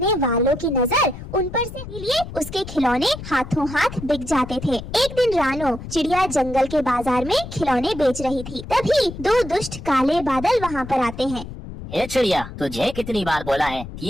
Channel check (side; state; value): left; noise; rumble, 11 dB below the sound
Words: वालों की नजर उन पर से लिए उसके खिलौने हाथों हाथ बिक जाते थे। एक दिन रानो चिड़िया जंगल के बाजार में खिलौने बेच रही थी, तभी दो दुष्ट काले बादल वहाँ पर आते हैं। ए चिड़िया, तुझे कितनी बार बोला है कि